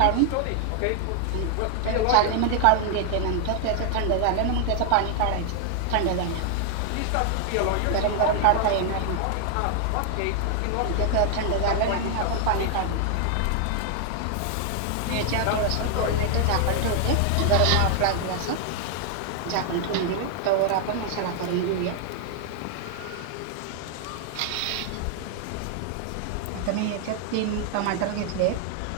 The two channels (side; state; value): both; different; correlation 0.00